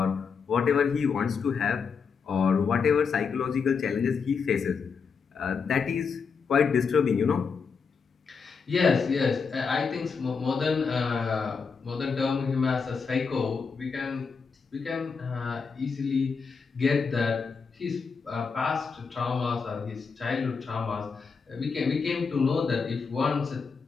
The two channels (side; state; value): right; quieter; 5.5 dB